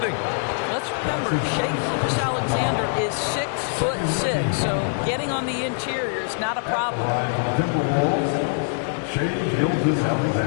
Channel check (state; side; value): silent; right; digital silence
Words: Let's remember, Shai Gilgeous-Alexander is 6'6", so getting on the interior is not a problem. For the Timberwolves, Shai